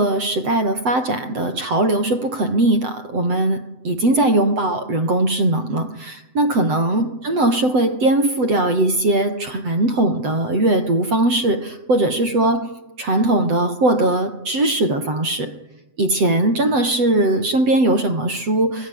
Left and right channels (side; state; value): left; late; 7.9 ms